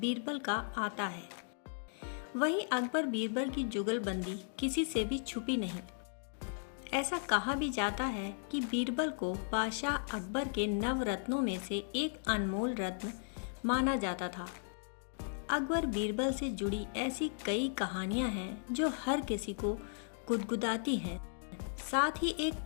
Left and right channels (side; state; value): right; silent; digital silence